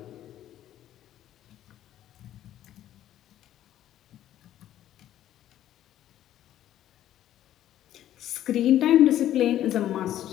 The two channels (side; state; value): right; quieter; 12.2 dB